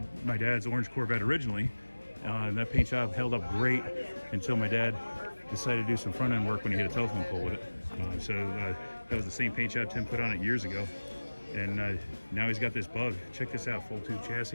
dad's orange Corvette originally. And that paint job held up great until my dad decided to do some front end work when he hit a telephone pole with it. That was the same paint job Tim put on it years ago. And now he's got this bug. Check this out, full tube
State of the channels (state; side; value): inverted; both; correlation -1.00